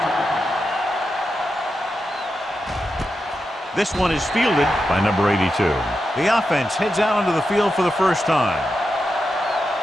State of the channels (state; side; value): normal; both; correlation 0.88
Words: This one is fielded by number 82. The offense heads out onto the field for the first time.